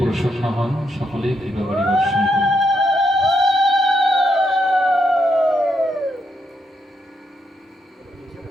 হন, সকলেই কৃপা বাড়ি বর্ষণ করুন।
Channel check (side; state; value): both; normal; correlation 0.79